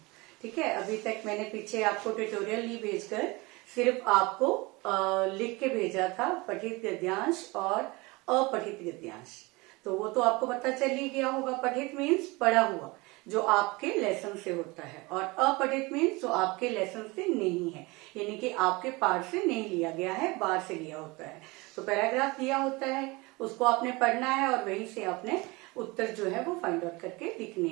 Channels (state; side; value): quieter; left; 24.3 dB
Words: ठीक है, अभी तक मैंने पीछे आपको ट्यूटोरियल नहीं भेजकर सिर्फ आपको लिख के भेजा था पठित गद्यांश और अपठित गद्यांश। तो वो तो आपको पता चल ही गया होगा। पठित मीन्स पढ़ा हुआ, जो आपके लेसन से होता है, और अपठित मीन्स जो आपके लेसन से नहीं है, यानी कि आपके पाठ से नहीं लिया गया है, बाहर से लिया होता है। तो पैराग्राफ दिया होता है, उसको आपने पढ़ना है और वहीं से आपने उत्तर जो है वो फाइंड आउट करके लिखने